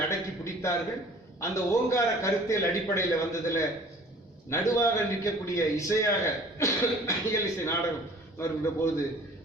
அடக்கி பிடித்தார்கள். அந்த ஓங்கார கருத்தியல் அடிப்படையில் வந்ததுல நடுவாக நிற்கக்கூடிய இசையாக இயல் இசை நாடகம் வருகின்ற போது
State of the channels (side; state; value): both; normal; correlation 0.49